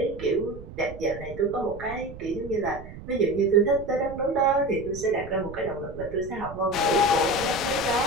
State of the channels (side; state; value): right; noise; rumble, 14 dB below the sound